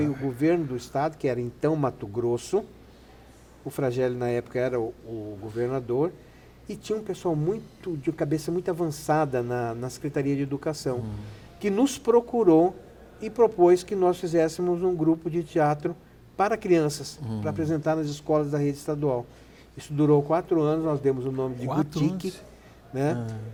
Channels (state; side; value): identical; both; correlation 1.00